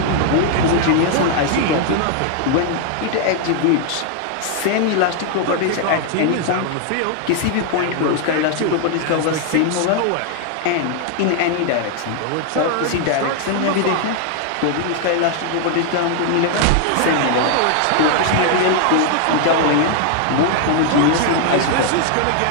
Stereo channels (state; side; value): different; both; correlation 0.00